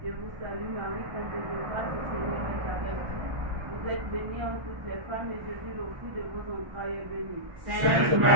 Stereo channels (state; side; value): late; left; 1.5 ms